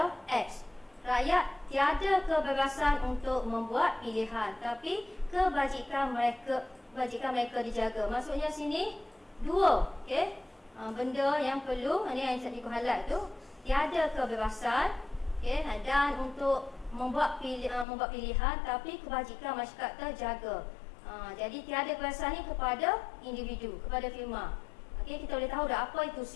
X. Rakyat tiada kebebasan untuk membuat pilihan, tapi kebajikan mereka dijaga. Maksudnya sini dua benda yang perlu, ini yang saya highlight tu, tiada kebebasan dan untuk membuat pilihan, tapi kebajikan masyarakat terjaga. Jadi tiada kebebasan ni kepada individu, kepada firma. Kita boleh tahu dah apa itu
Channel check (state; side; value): drops out; right; at 17.9 s